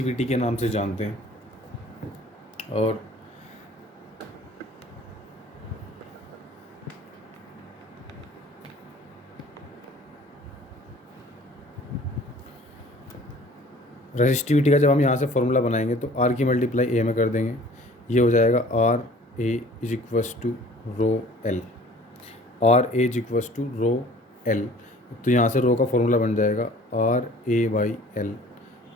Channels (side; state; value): both; normal; correlation 0.50